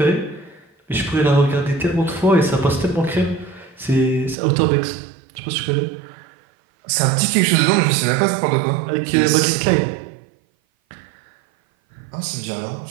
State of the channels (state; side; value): drops out; left; at 4.4 s